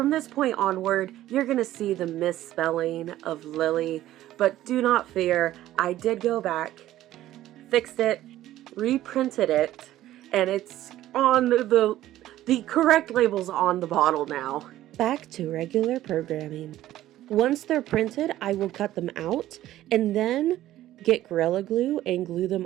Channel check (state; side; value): quieter; left; 14.0 dB